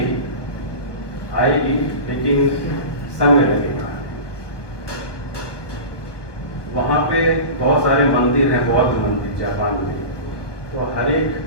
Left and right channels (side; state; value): right; late; 1.3 ms